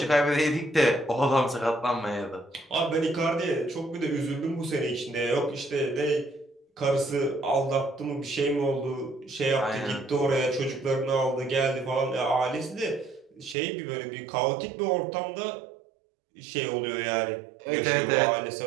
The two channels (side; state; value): left; drops out; at 13.6 s